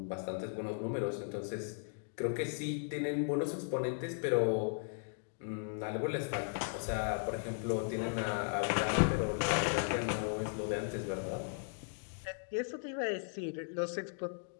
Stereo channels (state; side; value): silent; right; digital silence